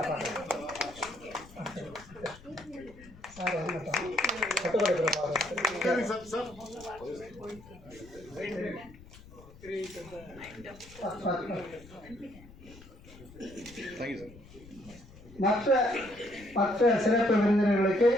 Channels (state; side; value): noise; left; rumble, 20 dB below the sound